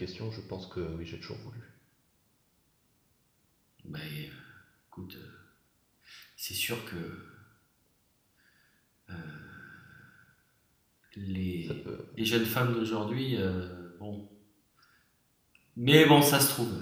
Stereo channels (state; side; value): identical; both; correlation 1.00